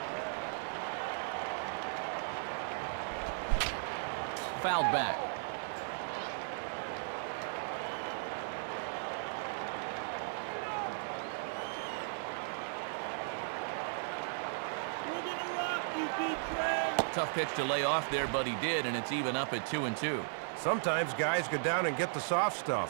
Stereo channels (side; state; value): left; silent; digital silence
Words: Fouled back. Tough pitch to lay off there, but he did, and it's even up at 2-2. Sometimes guys go down and get the soft